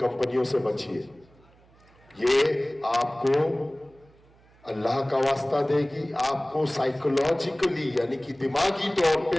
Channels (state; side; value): noise; right; hum, 29 dB below the sound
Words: से बचिए, ये आपको अल्लाह का वास्ता देगी, आपको साइकोलॉजिकली यानी कि दिमागी तौर